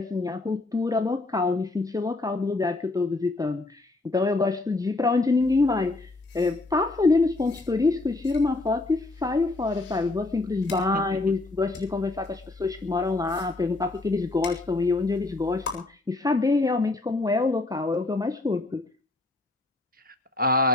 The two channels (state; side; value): quieter; right; 3.1 dB